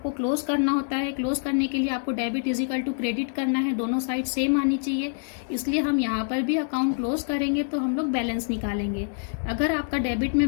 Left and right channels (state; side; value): silent; right; digital silence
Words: क्लोज करना होता है। क्लोज करने के लिए आपको debit is equal to credit करना है, दोनों साइड सेम आनी चाहिए। इसलिए हम यहाँ पर भी अकाउंट क्लोज करेंगे तो हम लोग बैलेंस निकालेंगे। अगर आपका डेबिट